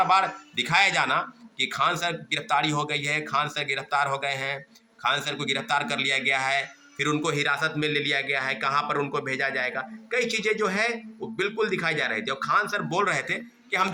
बार दिखाया जाना कि खान सर गिरफ्तारी हो गई है, खान सर गिरफ्तार हो गए हैं, खान सर को गिरफ्तार कर लिया गया है, फिर उनको हिरासत में ले लिया गया है, कहाँ पर उनको भेजा जाएगा, कई चीज़ें जो है वो बिल्कुल दिखाई जा रही थी। और खान सर बोल रहे थे कि हम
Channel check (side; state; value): both; identical; correlation 1.00